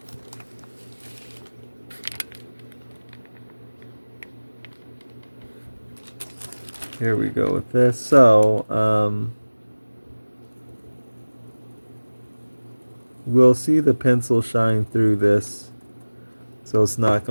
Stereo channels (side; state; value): both; inverted; correlation -1.00